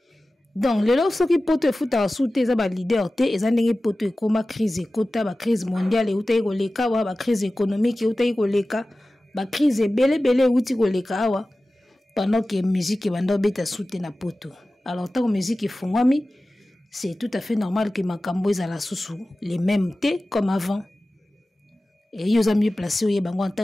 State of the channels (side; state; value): both; normal; correlation 0.96